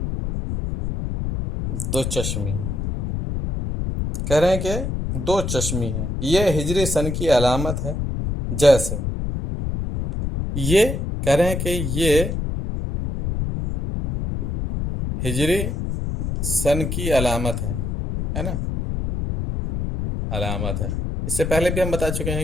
دو چشمی ہے، کہہ رہے ہیں کہ دو چشمی ہے، یہ ہجری سن کی علامت ہے، جیسے یہ کہہ رہے ہیں کہ یہ ہجری سن کی علامت ہے نا، علامت ہے۔ اس سے پہلے بھی ہم بتا چکے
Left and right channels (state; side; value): noise; left; rumble, 2 dB below the sound